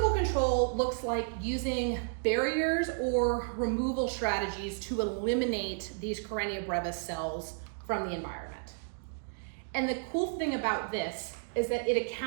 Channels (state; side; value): silent; left; digital silence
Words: control looks like using barriers or removal strategies to eliminate these Karenia brevis cells from the environment. And the cool thing about this is that it